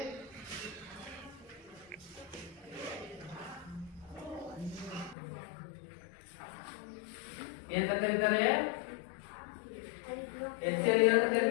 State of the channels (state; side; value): drops out; right; at 5.2 s